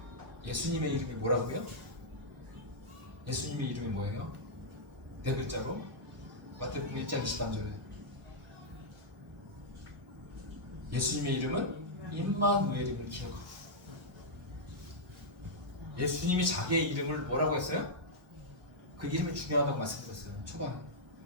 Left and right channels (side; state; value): left; late; 1.0 ms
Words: 예수님의 이름이 뭐라고요? 예수님의 이름이 뭐예요? 네 글자로 마태복음 1장 23절에 예수님의 이름은 임마누엘임을 기억하고 예수님이 자기의 이름을 뭐라고 했어요? 그 이름이 중요하다고 말씀드렸어요. 초반에.